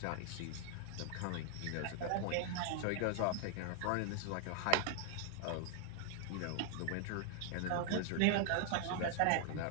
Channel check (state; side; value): different; both; correlation 0.00